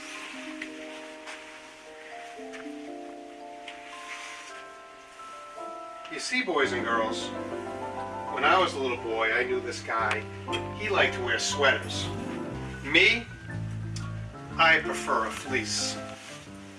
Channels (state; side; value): identical; both; correlation 1.00